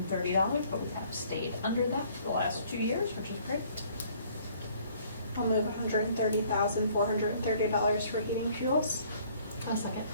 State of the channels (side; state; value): both; inverted; correlation -0.59